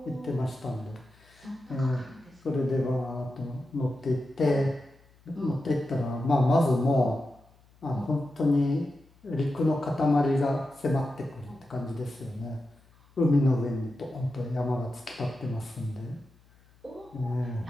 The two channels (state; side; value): noise; left; hum, 29 dB below the sound